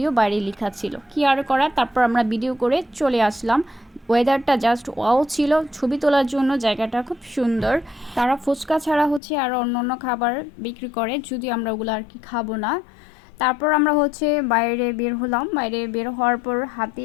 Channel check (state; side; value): drops out; right; at 9.2 s